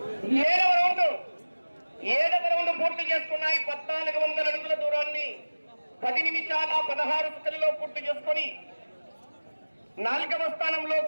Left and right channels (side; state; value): both; inverted; correlation -1.00